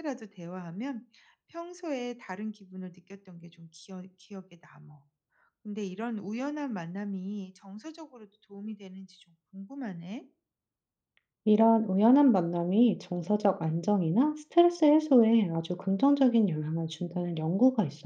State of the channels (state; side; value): identical; both; correlation 1.00